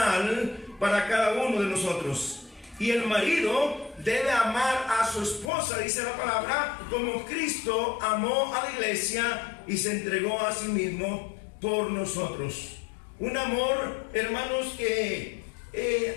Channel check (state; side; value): drops out; right; at 5.5 s